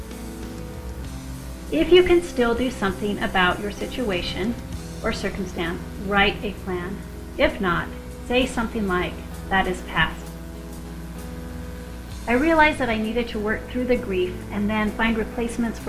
If you can still do something about your situation or circumstance, write a plan. If not, say something like, that is past. I realized that I needed to work through the grief and then find replacements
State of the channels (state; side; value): identical; both; correlation 1.00